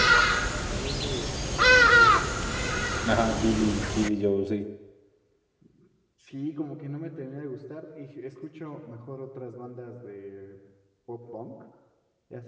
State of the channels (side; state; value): both; identical; correlation 1.00